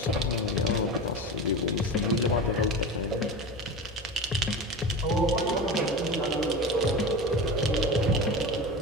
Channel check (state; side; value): normal; both; correlation 0.28